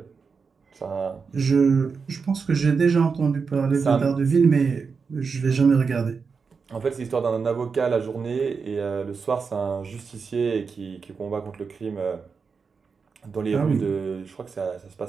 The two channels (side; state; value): left; quieter; 5.3 dB